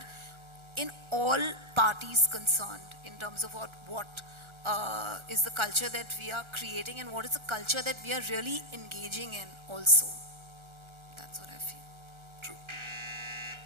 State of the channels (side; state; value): left; late; 1.4 ms